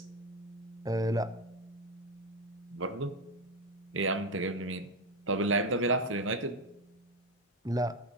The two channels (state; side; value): normal; both; correlation 0.12